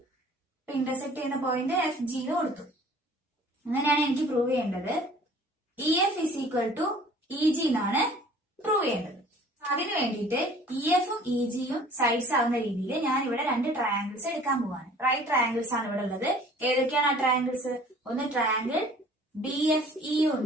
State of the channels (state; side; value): normal; both; correlation 0.51